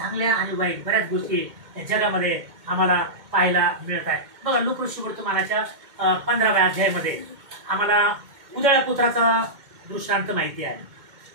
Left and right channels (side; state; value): left; late; 2.1 ms